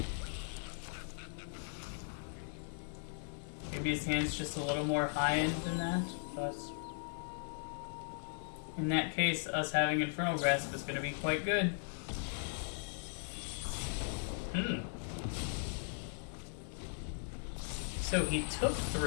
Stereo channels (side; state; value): right; silent; digital silence